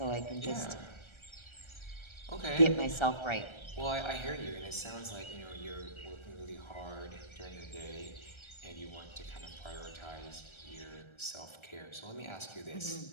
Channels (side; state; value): right; late; 1.3 ms